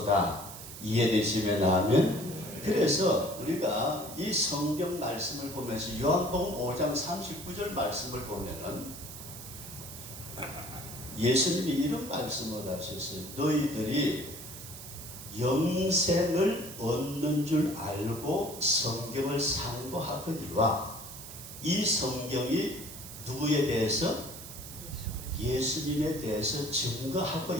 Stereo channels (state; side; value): noise; right; hiss, 12 dB below the sound